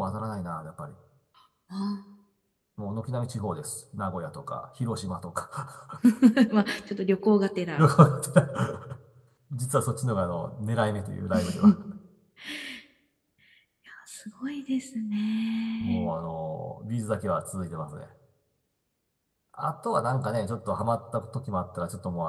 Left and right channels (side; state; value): both; identical; correlation 1.00